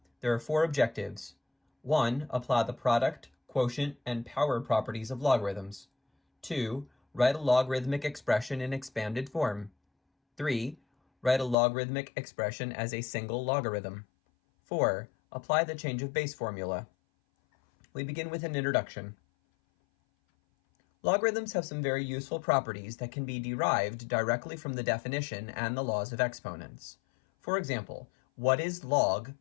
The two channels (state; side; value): drops out; right; at 11.6 s